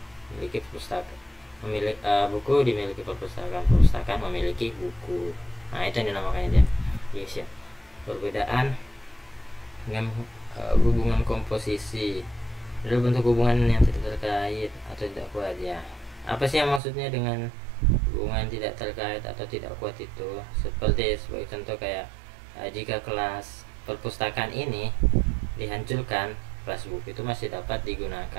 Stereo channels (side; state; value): left; drops out; at 16.8 s